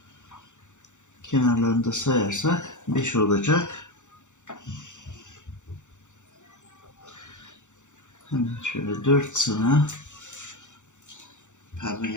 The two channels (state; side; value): late; right; 0.85 ms